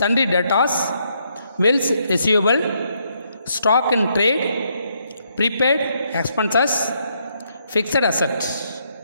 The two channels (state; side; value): inverted; both; correlation -0.75